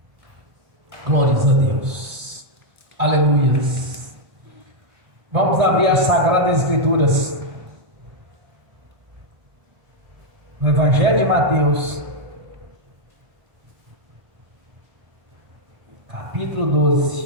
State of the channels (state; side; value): late; left; 1.7 ms